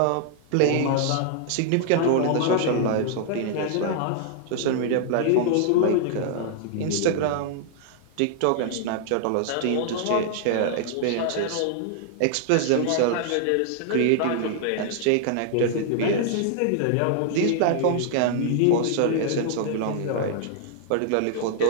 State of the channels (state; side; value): different; both; correlation -0.01